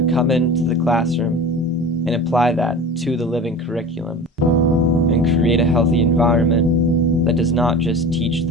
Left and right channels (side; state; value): both; normal; correlation 0.34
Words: come into the classroom and apply that to the living curriculum and create a healthy environment that does not just teach